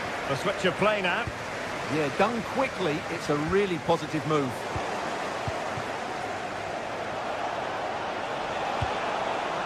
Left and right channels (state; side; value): identical; both; correlation 1.00